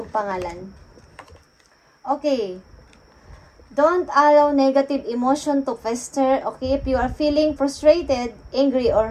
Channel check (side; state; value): both; identical; correlation 1.00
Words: pangalan. Okay. Don't allow negative emotion to fester. Okay, if you are feeling frustrated, angry,